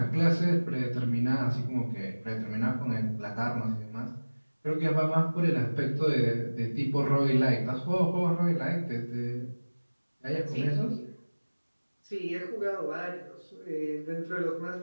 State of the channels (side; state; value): both; inverted; correlation -1.00